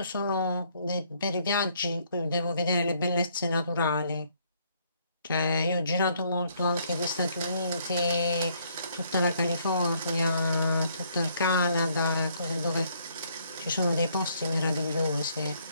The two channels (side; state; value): both; inverted; correlation -0.68